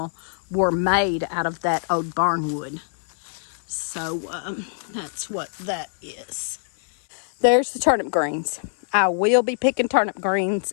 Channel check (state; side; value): silent; right; digital silence